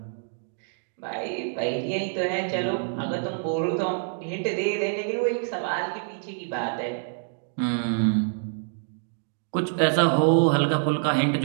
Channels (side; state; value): left; silent; digital silence